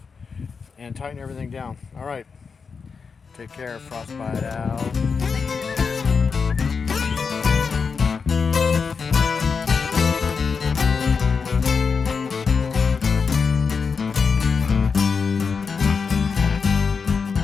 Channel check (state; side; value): quieter; right; 5.4 dB